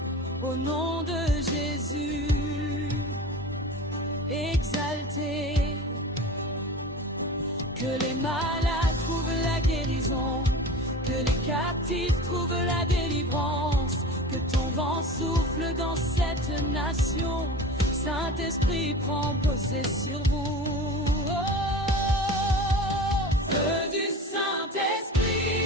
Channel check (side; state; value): both; normal; correlation 0.34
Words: au nom de Jésus, exalté, que les malades trouvent la guérison, que les captifs trouvent la délivrance, que ton vent souffle dans cette nation, Saint-Esprit prend possession sur vous. Oh, feu du